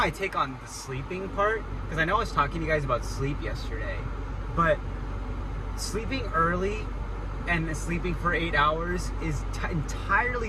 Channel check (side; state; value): both; identical; correlation 1.00